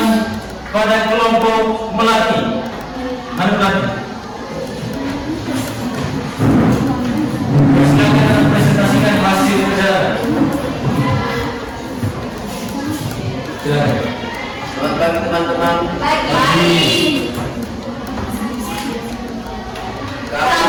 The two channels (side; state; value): both; identical; correlation 1.00